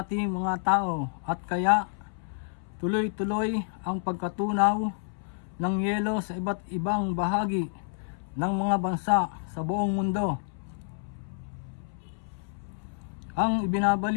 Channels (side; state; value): right; silent; 59 dB below the other